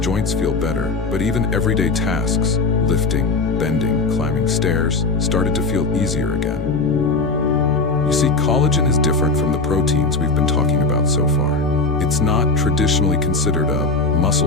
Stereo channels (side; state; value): right; quieter; 3.7 dB